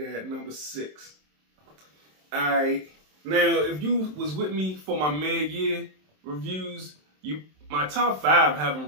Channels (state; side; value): late; left; 27 ms